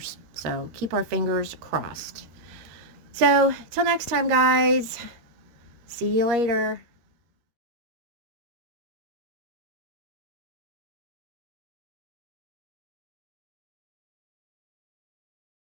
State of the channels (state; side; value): late; left; 13 ms